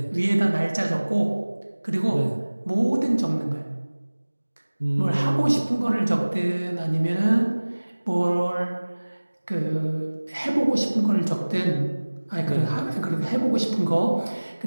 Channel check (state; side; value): inverted; both; correlation -1.00